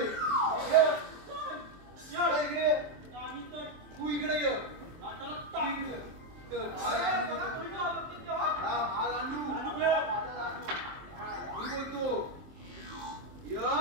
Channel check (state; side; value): late; left; 23 ms